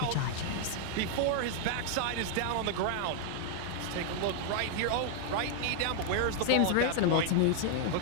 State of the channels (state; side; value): different; both; correlation 0.00